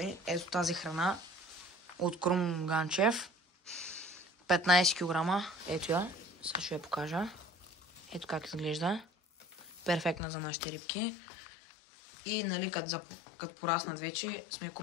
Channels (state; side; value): drops out; right; at 10.2 s